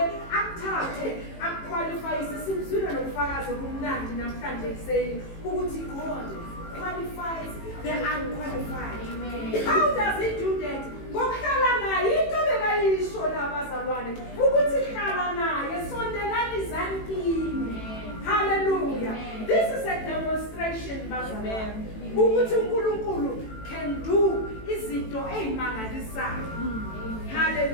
uzofakaza kumnandi namhlanje kuseni ukuthi God qualifies the unqualified. How does he do that? Ngokuhlala naye into bekayisho labazalwane ukuthi hlala naye sondelani zankini. Hallelujah. This is a demonstration bazalwane ukuthi uNkulunkulu can do izinto ezimangalisayo.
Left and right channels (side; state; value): right; late; 18 ms